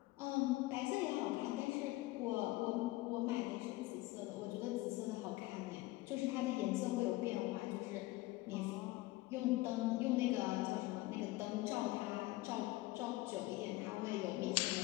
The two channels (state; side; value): quieter; right; 19.4 dB